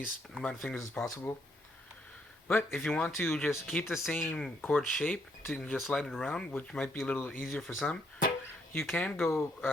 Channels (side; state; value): both; normal; correlation 0.72